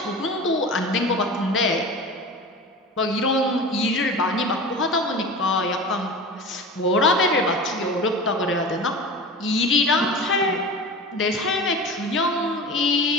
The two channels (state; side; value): normal; both; correlation 0.33